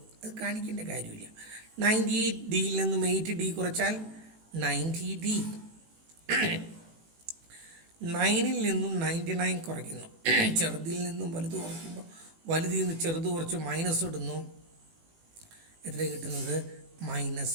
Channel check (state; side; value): late; left; 18 ms